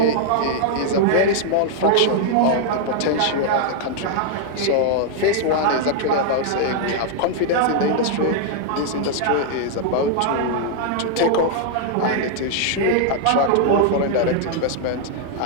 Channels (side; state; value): both; different; correlation 0.00